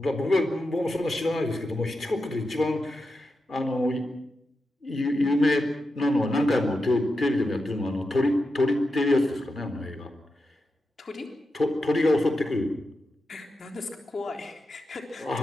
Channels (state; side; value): normal; both; correlation 0.89